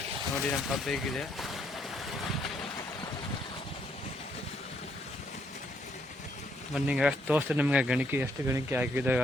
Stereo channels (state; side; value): normal; both; correlation 0.72